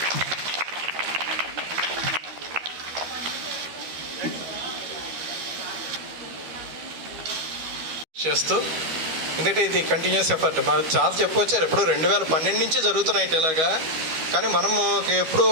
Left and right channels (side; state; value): left; late; 13 ms